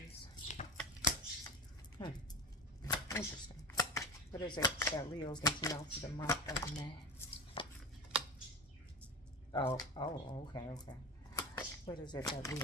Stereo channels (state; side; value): normal; both; correlation 0.26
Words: Interesting. What is it that Leos need to know for the month of May? Oh, okay. What is it that